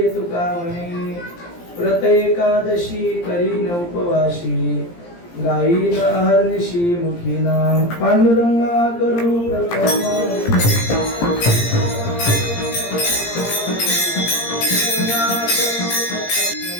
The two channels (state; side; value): late; right; 17 ms